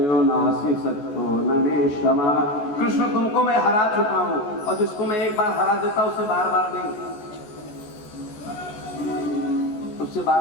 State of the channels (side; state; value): right; late; 14 ms